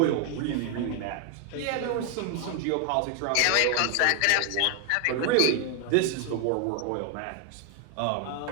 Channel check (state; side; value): different; both; correlation 0.00